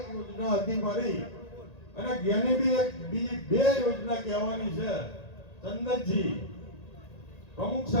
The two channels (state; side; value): late; right; 1.9 ms